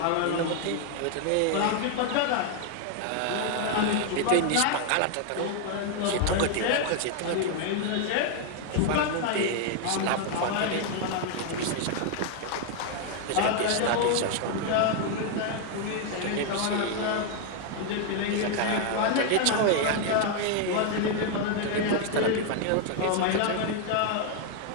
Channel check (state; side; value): different; both; correlation 0.00